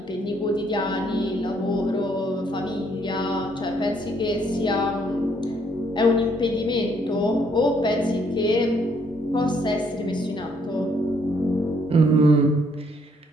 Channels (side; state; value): both; normal; correlation 0.68